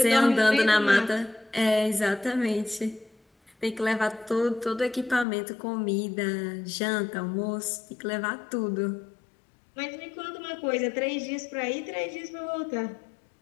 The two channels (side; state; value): right; drops out; at 5.2 s